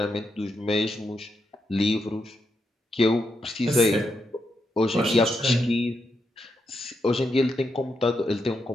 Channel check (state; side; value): normal; both; correlation 0.83